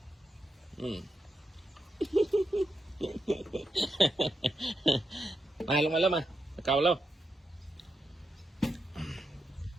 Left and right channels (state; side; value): normal; both; correlation 0.85